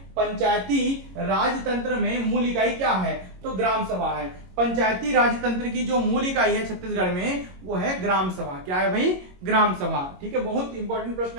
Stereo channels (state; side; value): late; left; 22 ms